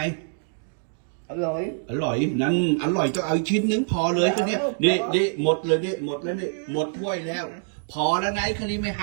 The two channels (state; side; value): silent; left; digital silence